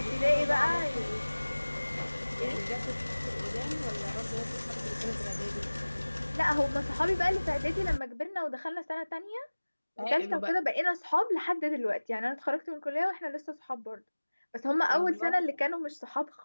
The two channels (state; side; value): inverted; both; correlation -1.00